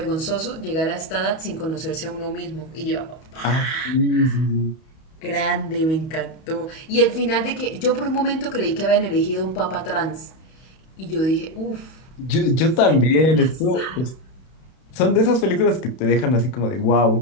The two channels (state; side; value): late; right; 31 ms